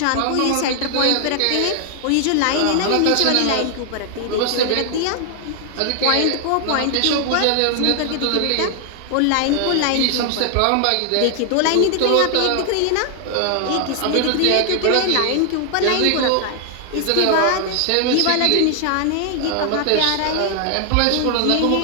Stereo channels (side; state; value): both; different; correlation 0.00